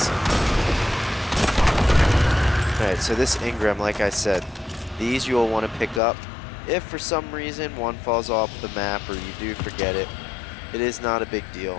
Alright, so this engram, like I said, these you will want to pick up. If for some reason one falls off the map or you do forget it, it is not a big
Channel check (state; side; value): drops out; right; at 6.0 s